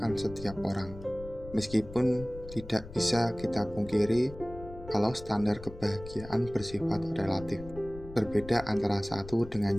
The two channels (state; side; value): noise; left; rumble, 15 dB below the sound